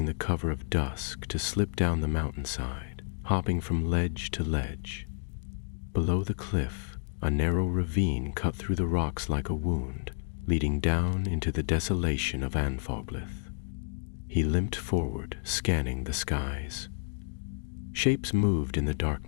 the cover of dusk to slip down the mountainside, hopping from ledge to ledge. Below the cliff, a narrow ravine cut through the rocks like a wound, leading down into the desolation of Anfoglith. He limped forward, scanning the skies. Shapes moved in the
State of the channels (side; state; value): right; silent; digital silence